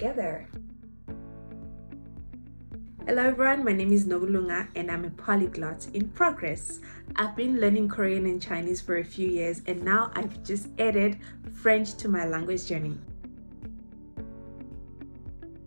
Hello everyone, my name is Nogulunga and I'm a polyglot in progress. I've been learning Korean and Chinese for a few years and now I've just added French to my language journey.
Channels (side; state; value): both; inverted; correlation -1.00